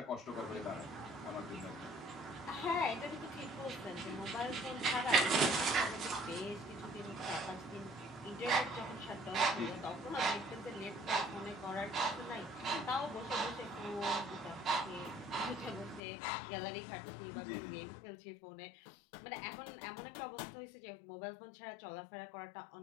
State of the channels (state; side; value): drops out; right; at 16.0 s